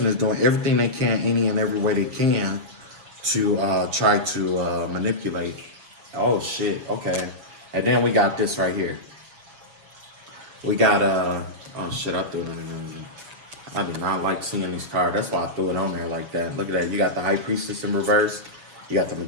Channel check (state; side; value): late; left; 7.1 ms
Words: is doing everything they can, any and every way they can, to try to manipulate. Oh shit. Okay. And then we got this right here. We got oh shit, I threw it in. I do not like seeing these cards. That's why I threw it on there like that. Look at that. You got the High Priestess in reverse. You got the